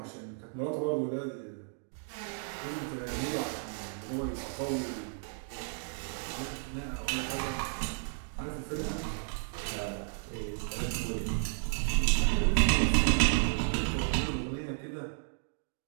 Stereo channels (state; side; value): silent; left; digital silence